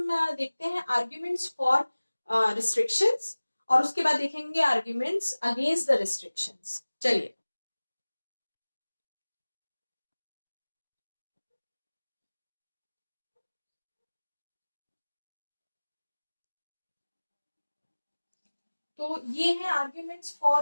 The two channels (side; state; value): both; inverted; correlation -1.00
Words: देखते हैं आर्ग्यूमेंट्स फॉर रिस्ट्रिक्शंस और उसके बाद देखेंगे आर्ग्यूमेंट्स अगेंस्ट द रिस्ट्रिक्शंस। चलिए, तो ये है आर्ग्यूमेंट्स